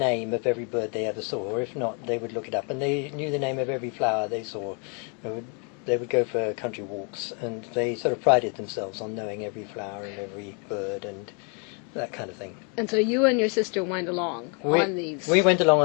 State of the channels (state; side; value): quieter; right; 37.0 dB